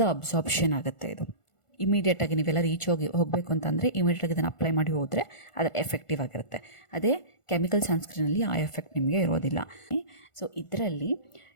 ಅಬ್ಸಾರ್ಪ್ಷನ್ ಆಗುತ್ತೆ. ಇದು ಇಮಿಡಿಯೇಟಾಗಿ ನೀವೆಲ್ಲ ರೀಚ್ ಹೋಗಬೇಕು ಅಂತಂದರೆ ಇಮಿಡಿಯೇಟಾಗಿ ಇದನ್ನು ಅಪ್ಲೈ ಮಾಡಿ ಹೋದರೆ ಅದರ ಎಫೆಕ್ಟಿವ್ ಆಗಿರುತ್ತೆ. ಅದೇ ಕೆಮಿಕಲ್ ಸನ್ಸ್ಕ್ರೀನಲ್ಲಿ ಆ ಎಫೆಕ್ಟ್ ನಿಮಗೆ ಇರೋದಿಲ್ಲ. ಸೊ ಇದರಲ್ಲಿ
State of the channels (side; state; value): right; late; 1.4 ms